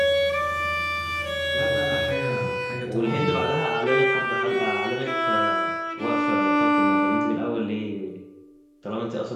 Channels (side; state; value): both; identical; correlation 1.00